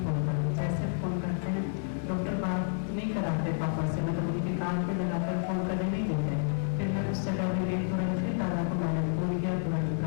फोन करो। जैसे फोन करते हैं, डॉक्टर बात नहीं कराते पापा से, मतलब उनके कान पे लगाकर फोन करने नहीं देते। फिर मैं उस जगह में गई, तुरंत फिर दादा को मैंने फोन किया, तुरंत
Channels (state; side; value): silent; right; 58 dB below the other